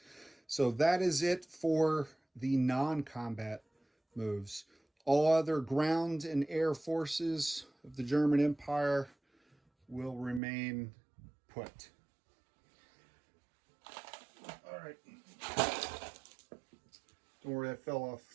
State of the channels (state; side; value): drops out; left; at 10.4 s